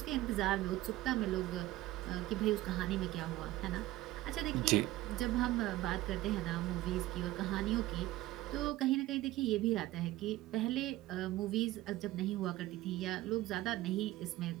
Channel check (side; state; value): left; quieter; 16.7 dB